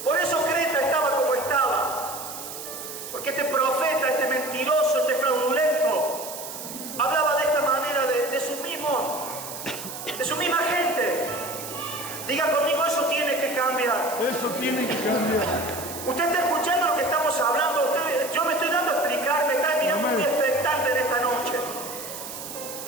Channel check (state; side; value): noise; right; hiss, 10 dB below the sound